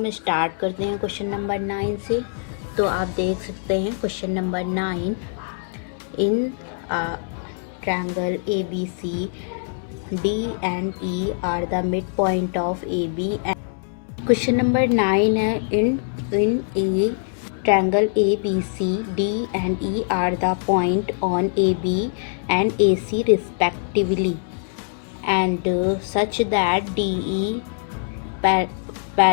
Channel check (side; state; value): right; silent; digital silence